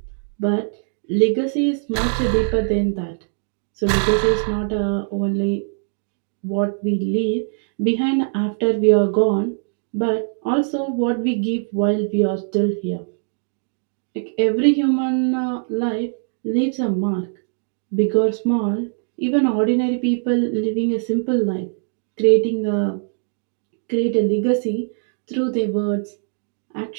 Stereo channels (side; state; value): left; silent; digital silence